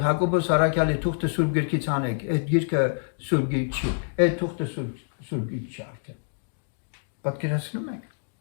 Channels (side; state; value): right; silent; digital silence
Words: Հակոբոս Արաքյալի թուղթը Սուրբ Գրքից անեք, այդ գիրքը Սուրբ Գիրք չի, այդ թուղթը Սուրբ Գիրք չի արդեն։ Պատկերացնում եք։